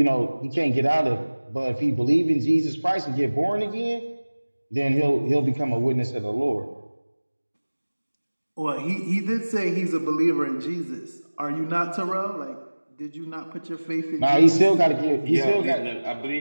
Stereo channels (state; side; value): inverted; both; correlation -1.00